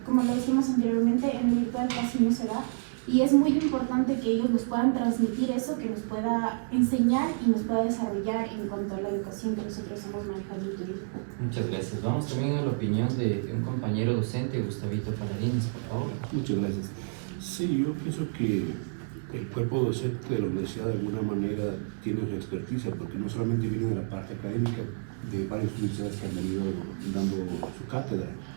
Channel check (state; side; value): silent; left; 58 dB below the other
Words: como lo decíamos anteriormente, en el virtual casi no se da. Y es muy importante que ellos nos puedan transmitir eso, que nos pueda enseñar y nos pueda desarrollar en cuanto a la educación que nosotros hemos manejado en el turismo. Muchas gracias. Vamos también a la opinión de un compañero docente, Gustavito Paladines, por favor. Muchas gracias. Sí, yo pienso que el cuerpo docente de la universidad de alguna manera tiene su experticia, porque no solamente viene de la parte académica de varias universidades que han venido dando su cátedra,